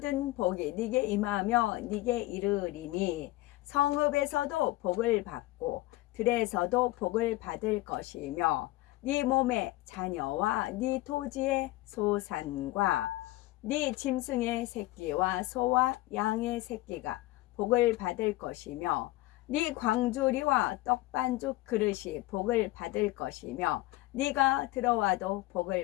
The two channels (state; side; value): quieter; right; 18.5 dB